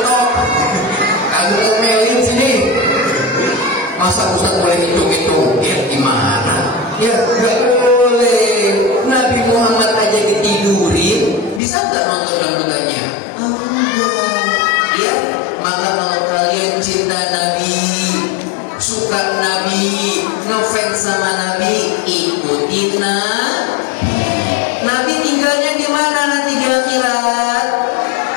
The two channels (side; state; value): right; drops out; at 11.6 s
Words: Kamu ngomelin sini. Masa Ustaz bolehin joget ya gimana? Ya gak boleh. Nabi Muhammad aja ditidurin, bisa gak nonton dangdutannya? Enggak. Ya, maka kalau kalian cinta Nabi, suka Nabi, ngefans sama Nabi, ikutin Nabi. Nabi tinggalnya di mana nanti di akhirat?